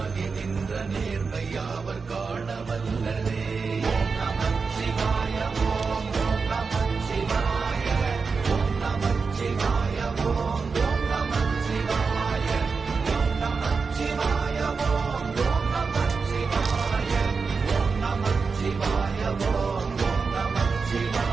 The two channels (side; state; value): left; quieter; 4.9 dB